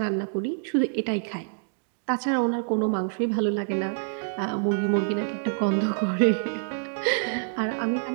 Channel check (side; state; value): left; silent; digital silence